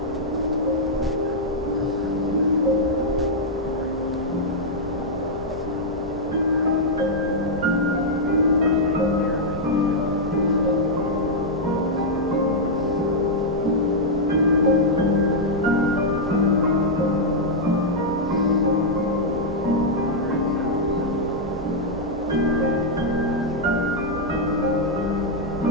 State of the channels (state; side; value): normal; both; correlation -0.06